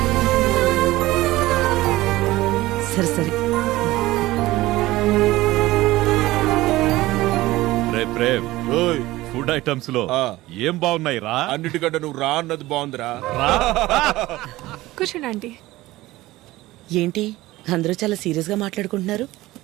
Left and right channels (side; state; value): left; quieter; 17.9 dB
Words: సరే సరే. ఫుడ్ ఐటమ్స్ లో ఏం బాగున్నాయి రా? అన్నిటికంటే నువ్వు రా అన్నది బాగుందిరా. కూర్చోండి ఆంటీ. ఏంటి అందరూ చాలా సీరియస్ గా మాట్లాడుకుంటున్నారు?